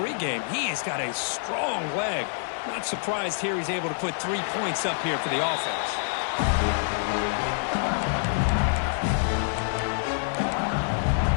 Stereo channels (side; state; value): right; silent; digital silence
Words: He has got a strong leg. Not surprised here he's able to put 3 points up here for the offense.